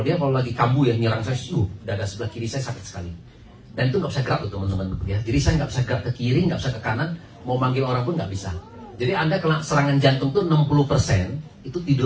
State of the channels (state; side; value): identical; both; correlation 1.00